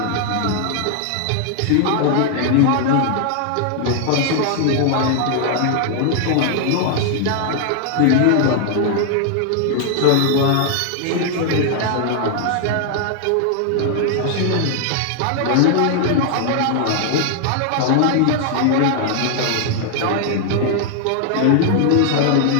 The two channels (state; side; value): different; both; correlation 0.00